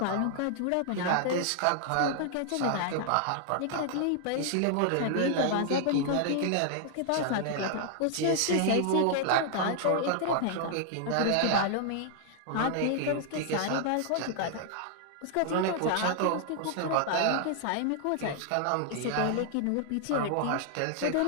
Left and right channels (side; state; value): both; different; correlation 0.00